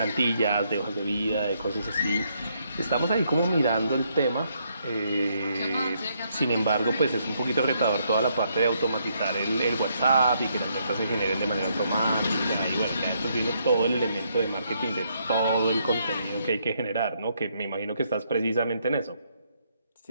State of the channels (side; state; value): both; inverted; correlation -0.74